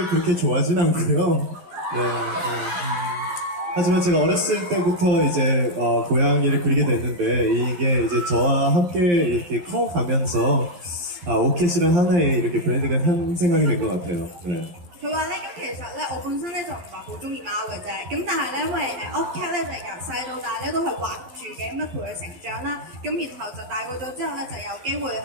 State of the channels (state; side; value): late; left; 11 ms